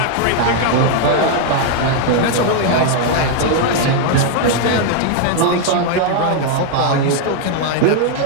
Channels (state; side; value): different; both; correlation 0.00